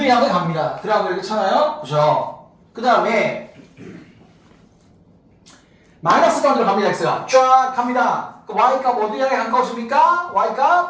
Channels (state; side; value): identical; both; correlation 1.00